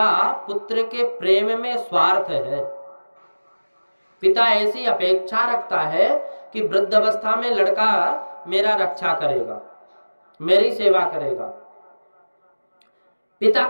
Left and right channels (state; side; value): inverted; both; correlation -1.00